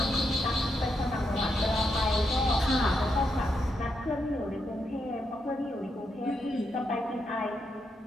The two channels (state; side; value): normal; both; correlation 0.81